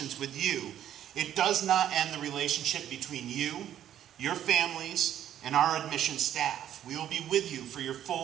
with you, it does not end the relationship between you, your families, and our admissions staff. We will be with you for your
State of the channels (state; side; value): quieter; left; 10.9 dB